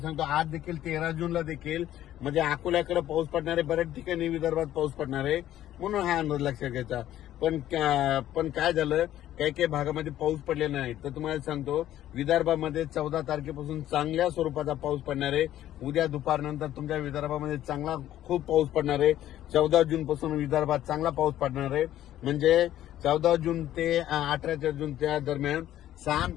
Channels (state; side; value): quieter; right; 12.7 dB